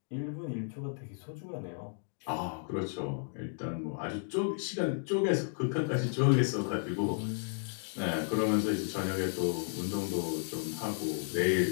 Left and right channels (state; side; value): silent; right; digital silence